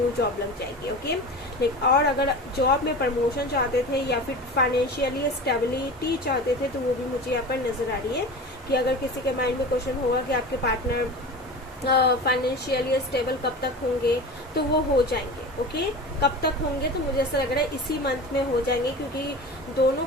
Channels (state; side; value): normal; both; correlation 0.32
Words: जॉब लग जाएगी, ओके। और अगर जॉब में प्रमोशन चाहते थे या फिर फाइनेंशियली स्टेबिलिटी चाहते थे, तो वो भी मुझे यहाँ पर नजर आ रही है कि अगर किसी के माइंड में क्वेश्चन होगा कि आपके पार्टनर फाइनेंशियली स्टेबल कब तक होंगे, तो वो हो जाएंगे। ओके, कब तक होंगे, तो मुझे ऐसा लग रहा है इसी मंथ में हो जाएंगे, क्योंकि दोनों